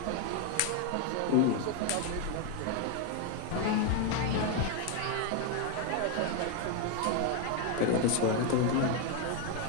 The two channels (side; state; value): both; different; correlation 0.01